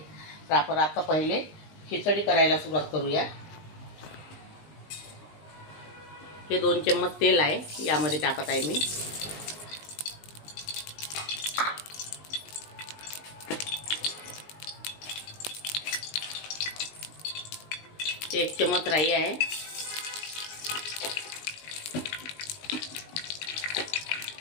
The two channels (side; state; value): right; late; 19 ms